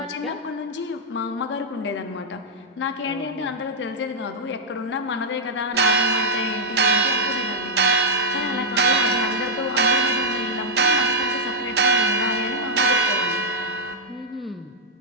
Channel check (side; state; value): both; normal; correlation -0.03